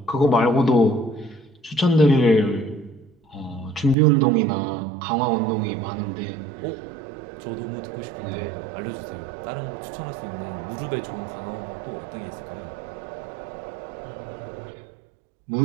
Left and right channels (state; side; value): drops out; left; at 4.0 s